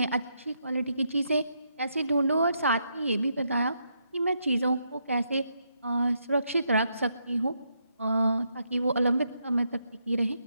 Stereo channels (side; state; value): both; inverted; correlation -0.79